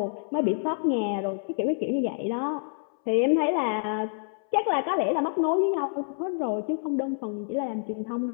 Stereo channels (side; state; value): right; silent; 60 dB below the other